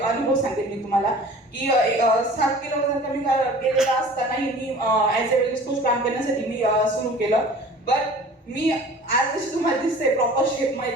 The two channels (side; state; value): both; normal; correlation 0.45